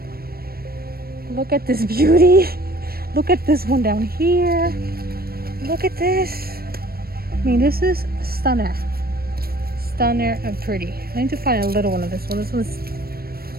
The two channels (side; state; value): left; late; 0.44 ms